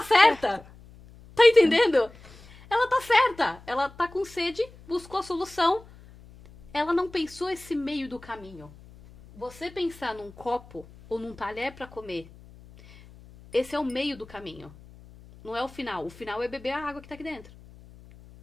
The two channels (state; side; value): noise; left; hum, 22 dB below the sound